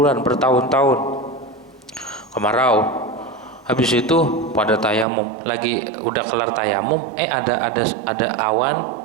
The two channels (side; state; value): left; drops out; at 5.1 s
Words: bertahun-tahun kemarau. Habis itu pada tayamum, lagi udah kelar tayamum, ada awan